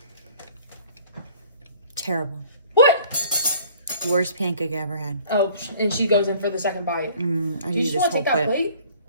Terrible. What? Worst pancake I ever had. Oh, and she goes in for the second bite. I Do you need just this want to whole take that plate. plate?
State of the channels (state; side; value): inverted; both; correlation -0.53